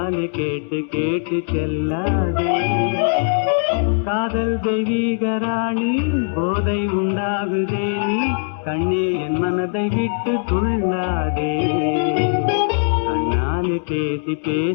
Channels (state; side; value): silent; right; digital silence